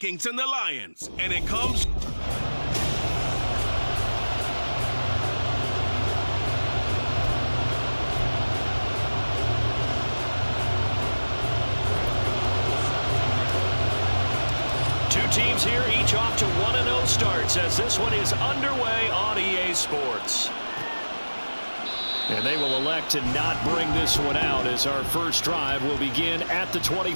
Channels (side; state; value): both; inverted; correlation -1.00